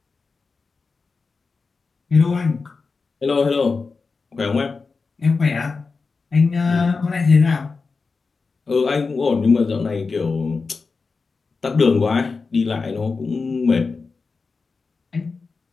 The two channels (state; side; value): quieter; right; 4.5 dB